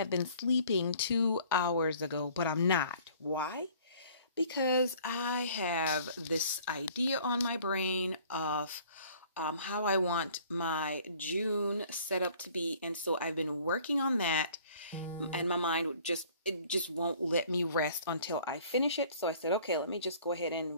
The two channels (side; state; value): both; inverted; correlation -0.54